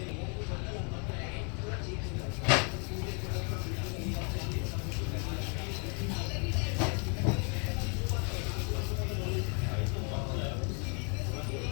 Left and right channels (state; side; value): quieter; right; 37.2 dB